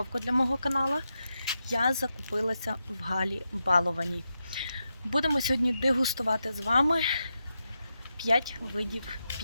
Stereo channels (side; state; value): both; inverted; correlation -0.87